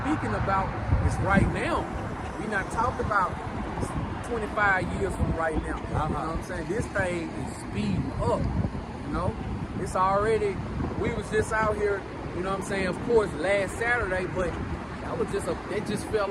speaking about is right now. We not talking about 25 years from right now. You know what I'm saying? This thing is speeding up, you know. It's already, we was just out here, you know what I'm saying, of course, last Saturday, but that was just it just felt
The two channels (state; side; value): identical; both; correlation 1.00